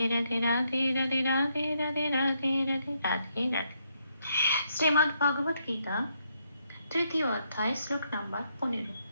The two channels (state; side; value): inverted; both; correlation -0.76